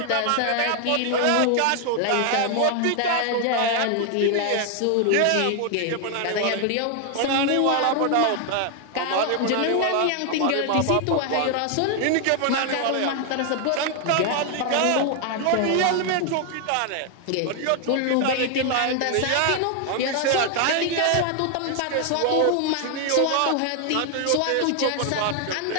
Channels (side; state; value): both; different; correlation 0.00